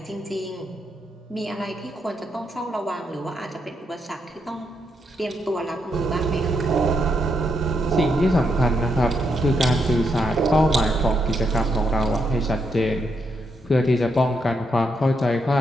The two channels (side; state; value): both; normal; correlation 0.79